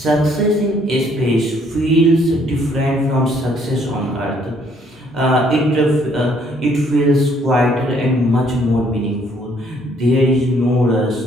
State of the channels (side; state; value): both; normal; correlation 0.65